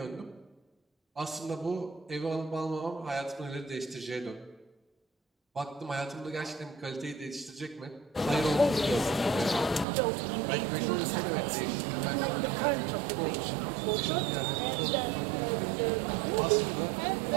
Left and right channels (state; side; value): drops out; left; at 9.9 s